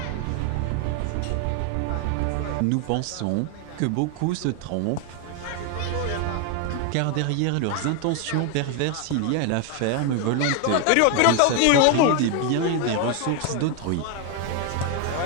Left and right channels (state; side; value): different; both; correlation 0.01